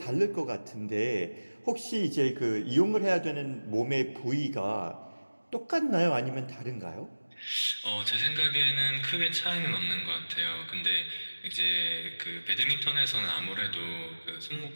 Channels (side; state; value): both; inverted; correlation -1.00